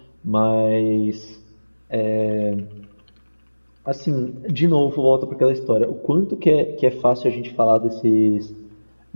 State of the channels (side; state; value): both; inverted; correlation -1.00